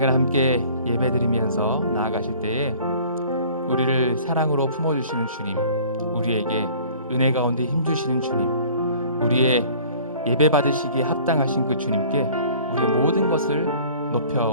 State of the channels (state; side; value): inverted; both; correlation -0.50